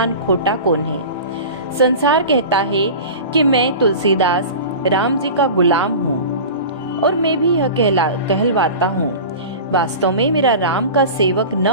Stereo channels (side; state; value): both; inverted; correlation -0.33